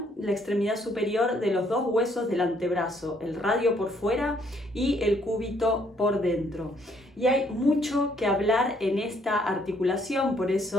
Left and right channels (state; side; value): normal; both; correlation 0.67